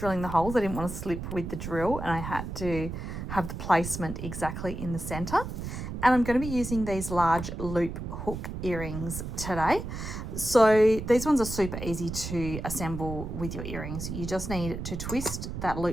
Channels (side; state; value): right; noise; rumble, 7 dB below the sound